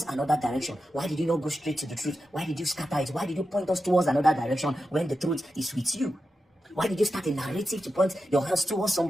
another direction? Why did you not go straight to the truth? Why did you scatter it? Why did you point us towards another direction when the truth is with you? Why did you start a narrative to point your hands towards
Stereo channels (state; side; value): normal; both; correlation 0.90